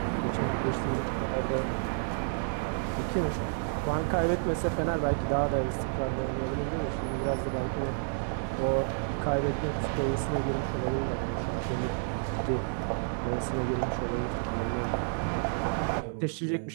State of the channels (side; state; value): left; silent; digital silence